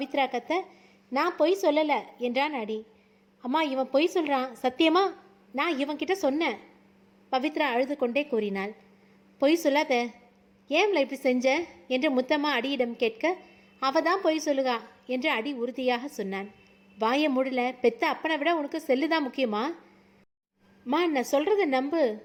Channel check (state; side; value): identical; both; correlation 1.00